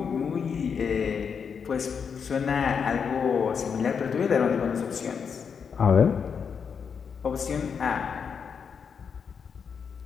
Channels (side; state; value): right; quieter; 6.5 dB